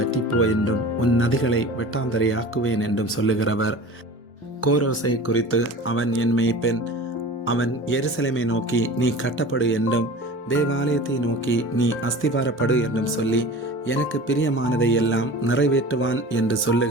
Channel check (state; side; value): normal; both; correlation 0.37